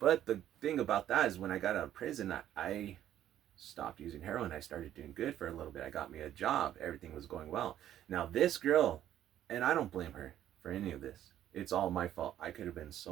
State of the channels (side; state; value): left; quieter; 11.6 dB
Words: the thing about that is, when I got out of prison, I stopped using heroin. I started doing good for a little bit. I got me a job. Everything was going well. Now this girl, and I don't blame her for any of this. It's all my fault. I could have been so